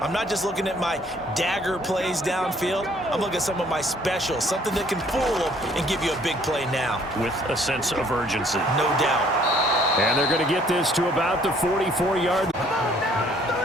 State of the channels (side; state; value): both; normal; correlation 0.60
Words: not just looking at my dagger plays downfield. I'm looking at some of my specials, something that can fool them and give you a big play now. With a sense of urgency. No doubt. And they're going to get this to about the 44-yard.